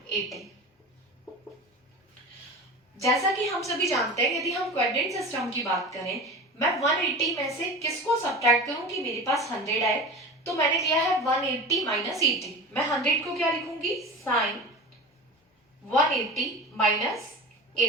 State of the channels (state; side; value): normal; both; correlation 0.32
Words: 80। जैसा कि हम सभी जानते हैं यदि हम क्वाड्रेंट सिस्टम की बात करें, मैं 180 में से किसको सब्ट्रैक्ट करूं कि मेरे पास 100 आए, तो मैंने लिया है 180 माइनस 80। मैं 100 को क्या लिखूंगी, साइन 180 माइनस